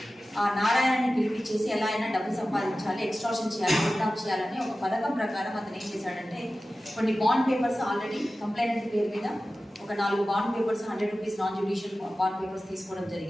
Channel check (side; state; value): both; normal; correlation 0.95